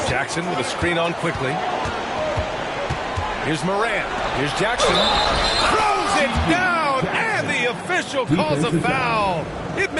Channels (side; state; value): both; identical; correlation 1.00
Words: Jackson with a screen on Quickly. Here's Morant. Here's Jackson. Throws it down, and the official calls a foul. It